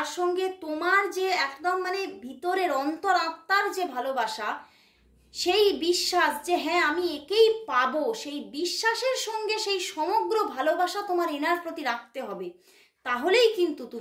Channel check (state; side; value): identical; both; correlation 1.00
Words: সঙ্গে তোমার যে একদম মানে ভিতরের অন্তর আত্মার যে ভালোবাসা, সেই বিশ্বাস যে হ্যাঁ আমি একেই পাবো, সেই বিশ্বাসের সঙ্গে সেই সমগ্র ভালোবাসা তোমার এনার প্রতি রাখতে হবে, তাহলেই কিন্তু